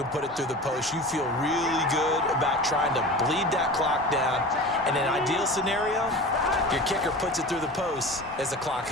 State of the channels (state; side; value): normal; both; correlation 0.34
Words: can put it through the post, you feel really good about trying to bleed that clock down. In an ideal scenario, your kicker puts it through the post as the clock